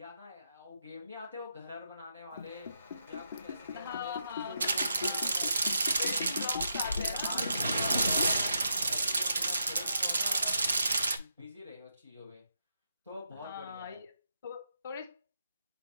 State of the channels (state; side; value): inverted; both; correlation -0.81